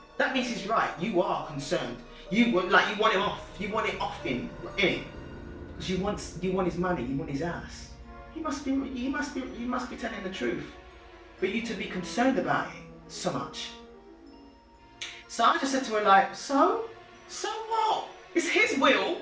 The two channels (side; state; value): both; identical; correlation 1.00